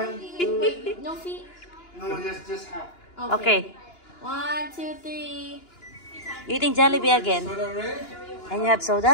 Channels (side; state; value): right; late; 2.9 ms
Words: 2. No feet. No, just half. Okay. 1, 2, 3. Eating Jollibee again. And you have